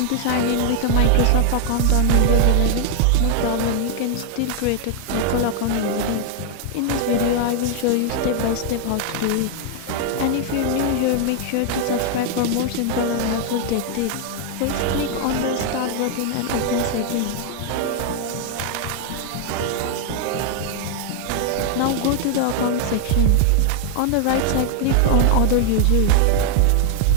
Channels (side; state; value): both; different; correlation 0.00